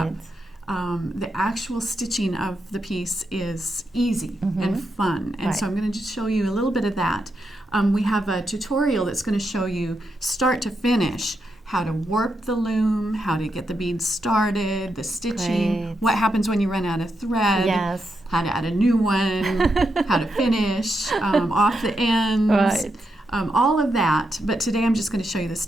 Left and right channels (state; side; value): normal; both; correlation 0.84